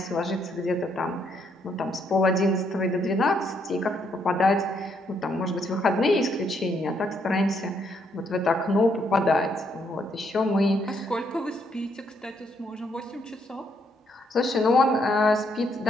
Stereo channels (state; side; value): normal; both; correlation 0.73